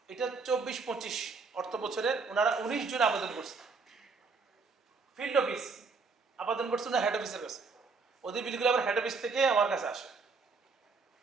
এটা 24-25 অর্থ বছরের ওনারা 19 জন আবেদন করছে। ফিল্ড অফিস আবেদন করছে না হেড অফিসের কাছে, ওদের বিলগুলো আবার হেড অফিস থেকে আমার কাছে আসে।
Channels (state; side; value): quieter; left; 4.6 dB